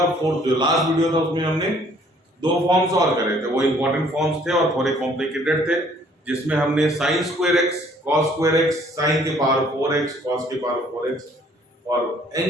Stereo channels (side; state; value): both; normal; correlation 0.59